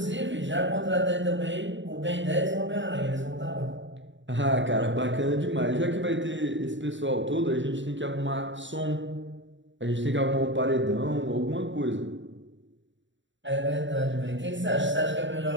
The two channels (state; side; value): late; left; 0.54 ms